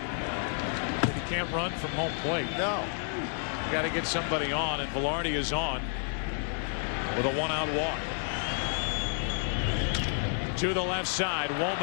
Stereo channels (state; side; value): silent; right; 56 dB below the other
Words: he can't run from home plate. No. Got to get somebody on, and Velarde is on with a 1-out walk. To the left side,